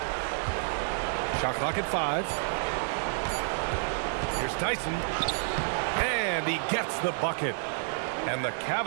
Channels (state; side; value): silent; left; 58 dB below the other